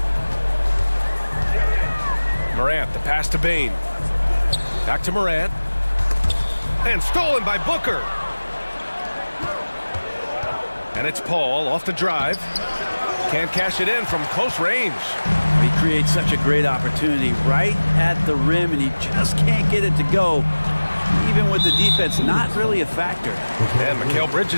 Morant, the pass to Bain. Back to Morant. And stolen by Booker. And it's Paul off the drive. Can't cash it in from close range. He creates such a great opportunity right at the rim, and he just can't get it to go. Even with the defense not really a factor. And Mikal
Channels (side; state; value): both; inverted; correlation -1.00